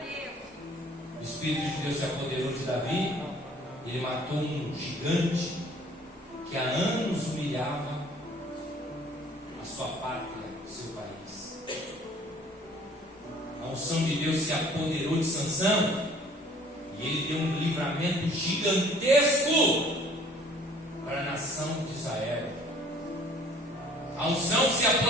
Deus. O Espírito de Deus se apoderou de Davi. Ele matou um gigante que há anos humilhava a sua pátria, o seu país. A unção de Deus se apoderou de Sansão e ele deu um livramento gigantesco para a nação de Israel. A unção se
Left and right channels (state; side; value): normal; both; correlation 0.53